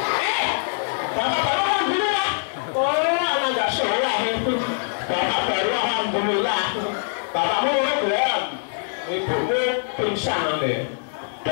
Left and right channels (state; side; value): silent; right; digital silence